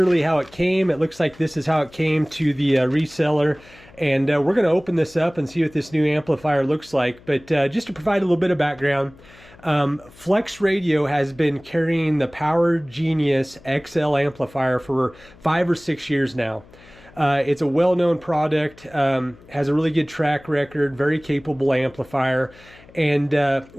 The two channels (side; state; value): left; noise; hum, 24 dB below the sound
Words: how it came. It looks like this is how it came to the reseller, and we're going to open this up and see what this new amplifier looks like. But just to provide a little bit of background, Flex Radio has been carrying the Power Genius XL amplifier for 5 or 6 years now. It's a well-known product, has a really good track record, very capable amplifier. And